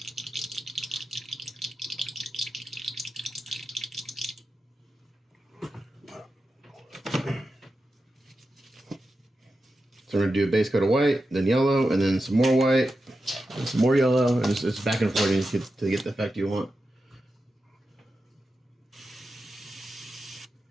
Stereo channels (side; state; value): both; normal; correlation 0.90